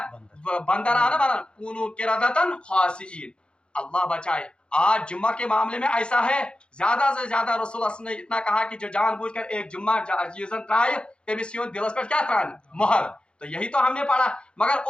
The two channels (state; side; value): late; right; 0.055 ms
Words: بندر آنا بنا کونو قردۃ خاسئین. اللہ بچائے. آج جمعہ کے معاملے میں ایسا ہے زیادہ سے زیادہ رسول اللہ نے اتنا کہا کہ جو جان بوجھ کر ایک جمعہ چیزن ترائے تمس دلس پہ کیا تران مہر. تو یہی تو ہم نے پڑھا. مگر